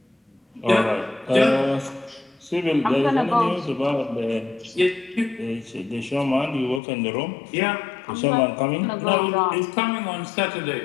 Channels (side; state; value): right; drops out; at 6.8 s